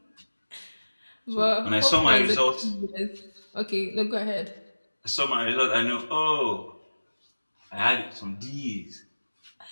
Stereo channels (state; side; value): inverted; both; correlation -1.00